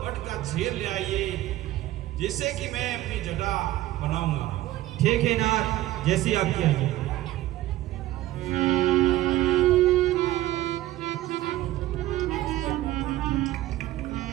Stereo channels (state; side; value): quieter; left; 15.4 dB